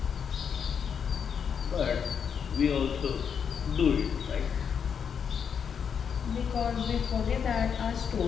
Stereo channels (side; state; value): right; quieter; 7.1 dB